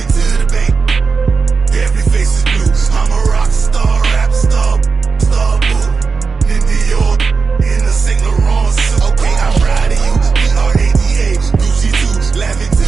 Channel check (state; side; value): quieter; left; 4.9 dB